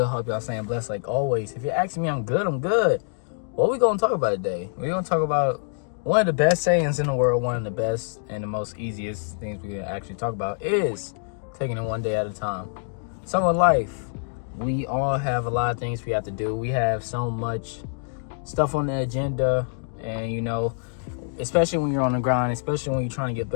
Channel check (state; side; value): silent; right; digital silence